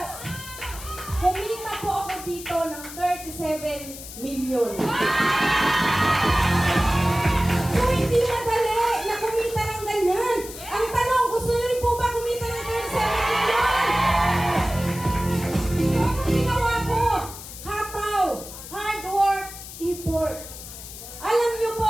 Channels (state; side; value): noise; left; hiss, 13 dB below the sound